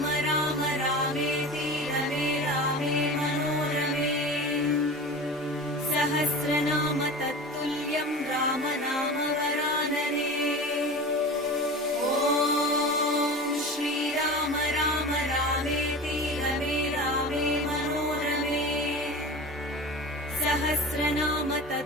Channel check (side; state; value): both; normal; correlation 0.32